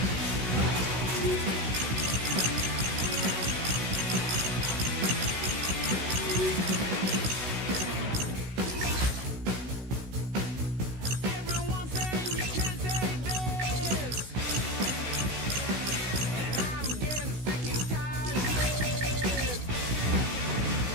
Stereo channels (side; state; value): left; late; 16 ms